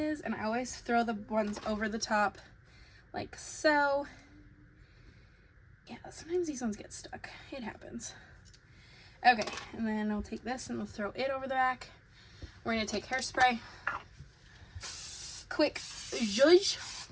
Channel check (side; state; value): both; identical; correlation 1.00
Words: and I always throw the ones over the top like so. Yeah, sometimes these ones get stuck. It happens. Okay, and then I'll take this and we'll throw it over the back. We're going to take hairspray. Quick zhuzh.